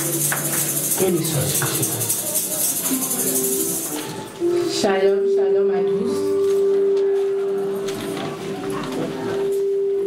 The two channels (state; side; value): identical; both; correlation 1.00